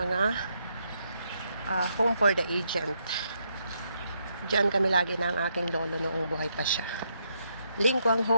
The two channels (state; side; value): inverted; both; correlation -0.77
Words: home for the agent. Diyan kami lagi ng aking lolo noong buhay pa siya. Lingkwang